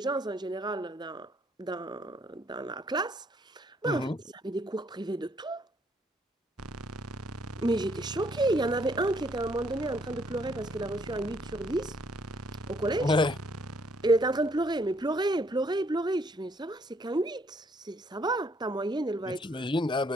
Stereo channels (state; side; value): normal; both; correlation 0.68